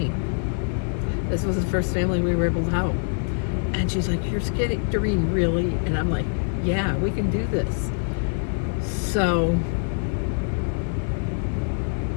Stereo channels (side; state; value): right; silent; digital silence